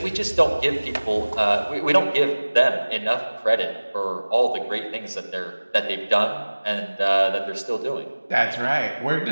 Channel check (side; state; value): both; inverted; correlation -1.00